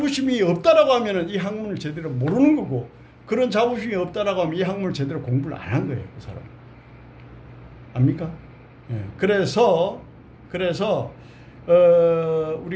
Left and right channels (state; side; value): identical; both; correlation 1.00